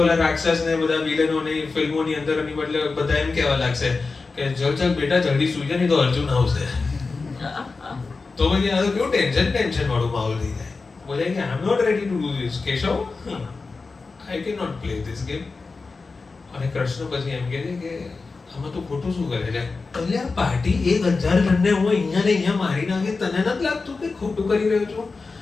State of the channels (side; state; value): right; quieter; 4.1 dB